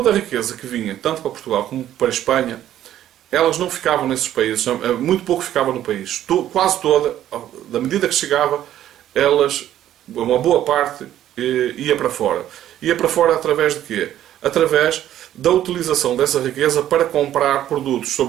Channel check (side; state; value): left; quieter; 12.0 dB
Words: a riqueza que vinha, tanto para Portugal como para a Espanha, elas não ficavam nesses países, muito pouco ficava no país. Quase toda, da medida que chegava, uma boa parte ia para fora. Ia para fora através de quê? Através da utilização dessa riqueza para comprar produtos,